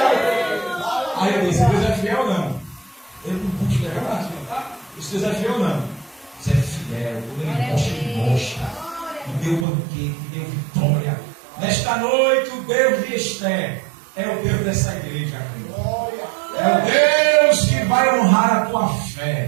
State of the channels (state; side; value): drops out; left; at 9.7 s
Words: Aí eu disse: Deus é fiel ou não? Eu não pude levar na cima, tá? Isso Deus é fiel ou não? Deus é fiel, quando ele mostra, me deu banquete, me deu vitória. Nesta noite, o Deus de Esther é o Deus dessa igreja, crente. É o Deus que vai honrar a tua